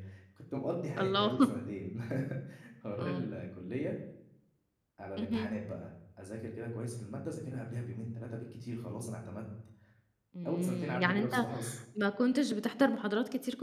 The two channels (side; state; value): both; identical; correlation 1.00